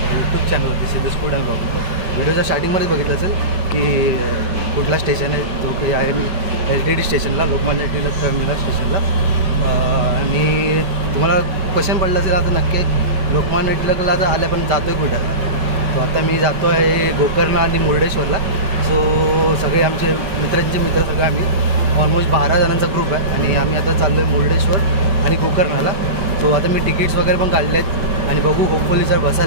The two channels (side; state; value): left; late; 5.2 ms